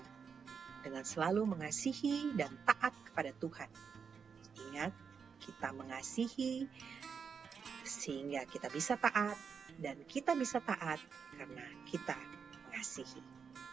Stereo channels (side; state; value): left; quieter; 6.2 dB